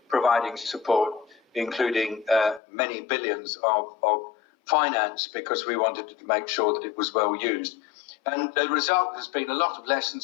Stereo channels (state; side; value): drops out; right; at 2.6 s